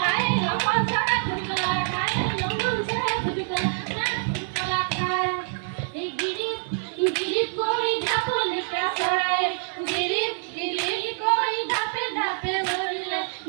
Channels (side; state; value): left; silent; 61 dB below the other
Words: আমার সারা খুদলা খায় লম্বন সারা খুদলা খায় এই গিরিপ কই ধাপলে পেছড়ায় গিরিপ কই ধাপে ধাপে বলিলে